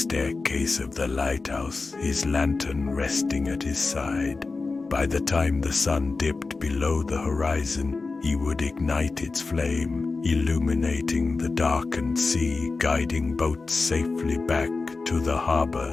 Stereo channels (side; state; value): right; quieter; 3.9 dB